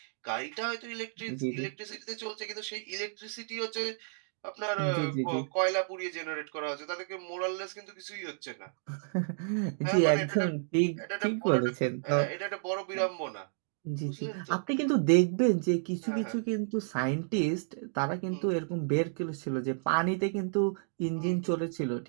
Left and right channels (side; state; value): left; silent; digital silence